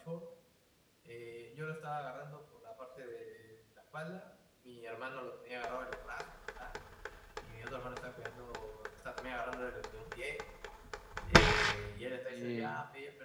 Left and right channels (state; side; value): identical; both; correlation 1.00